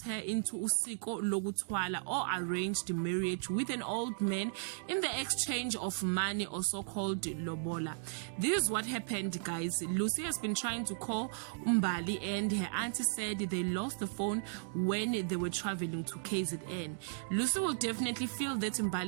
her into usiko lokuthwala, or arranged marriage with an old man in the exchange of money, or so-called lobola. This is what happened, guys. Lucy has been trying to call Mbali and her auntie said they lost the phone when they were traveling to KZN. Lucy will definitely feel that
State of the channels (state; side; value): silent; left; digital silence